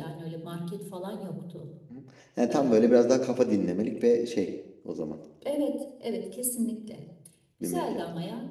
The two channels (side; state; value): both; identical; correlation 1.00